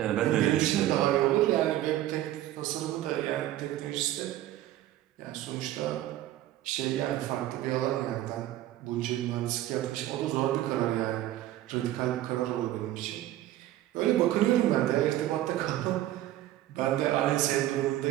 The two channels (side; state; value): left; quieter; 14.1 dB